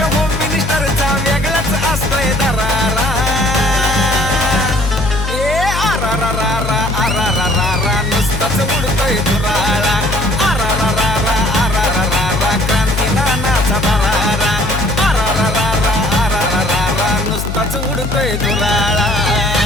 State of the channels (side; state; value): left; noise; hum, 4 dB below the sound